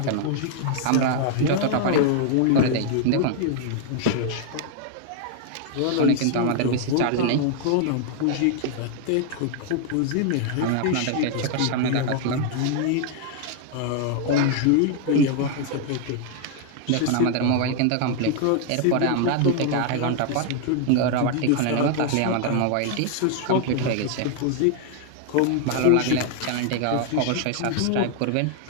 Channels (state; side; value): different; both; correlation 0.00